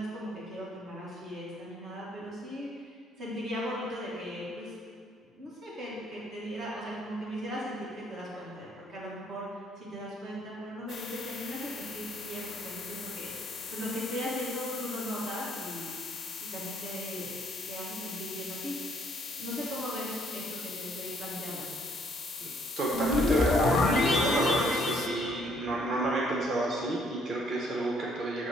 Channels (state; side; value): normal; both; correlation 0.66